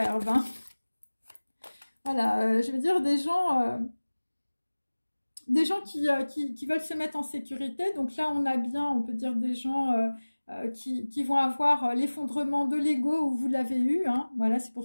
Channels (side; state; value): both; inverted; correlation -1.00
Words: Hein. Voilà, je veux dire, des gens qui veulent se mettre en sécurité. Donc là, on a bien, on peut dire, des gens qui vont avoir l'effondrement de l'ego où vous l'avez eu. Hein. Voilà, c'est